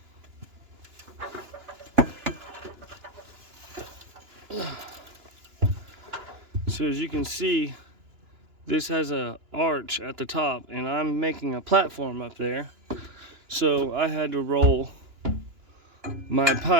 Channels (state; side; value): late; left; 2.9 ms